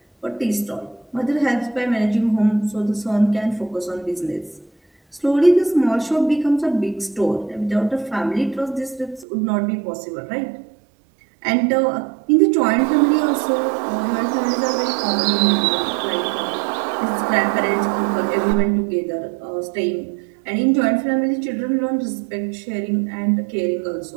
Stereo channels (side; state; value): left; drops out; at 9.2 s